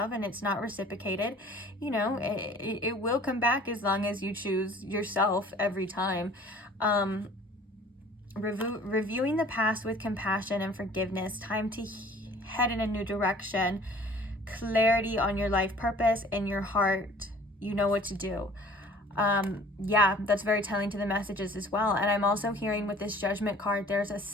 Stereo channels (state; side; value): normal; both; correlation 0.50